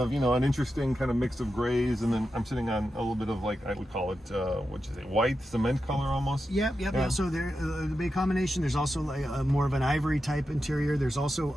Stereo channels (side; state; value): both; normal; correlation 0.89